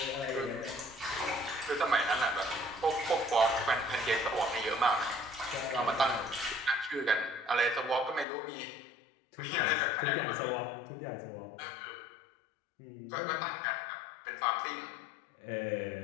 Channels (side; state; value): right; drops out; at 8.2 s